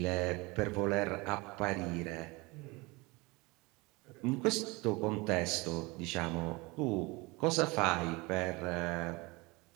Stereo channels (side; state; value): left; quieter; 24.8 dB